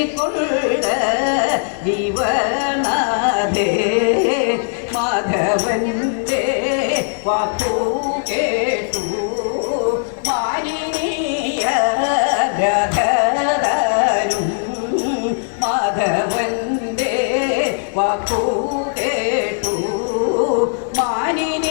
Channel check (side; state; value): right; silent; 67 dB below the other